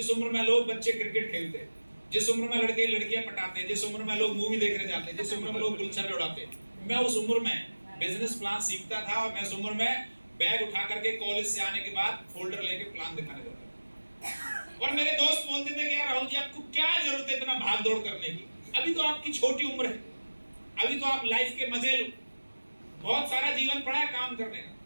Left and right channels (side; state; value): both; inverted; correlation -1.00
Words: उम्र में लोग बच्चे क्रिकेट खेलते हैं, जिस उम्र में लड़के लड़कियां पटाते हैं, जिस उम्र में लोग मूवी देखने जाते हैं, जिस उम्र में लोग गुलछर्रे उड़ाते हैं, मैं उस उम्र में बिजनेस प्लान सीखता था। और मैं उस उम्र में बैग उठा करके कॉलेज से आने के बाद फोल्डर लेके प्लान दिखाने जाता था। और मेरे दोस्त बोलते थे कि यार राहुल जी आपको क्या जरूरत है इतना भाग दौड़ करने की, अभी तो आपकी छोटी उम्र है, अभी तो आप लाइफ के मजे लो, बहुत सारा जीवन पड़ा है काम करने का।